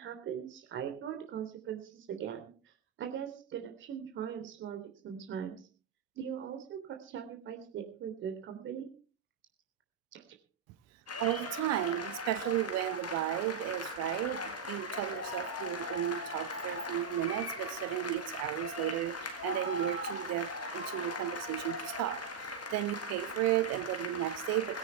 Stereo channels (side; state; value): left; quieter; 7.0 dB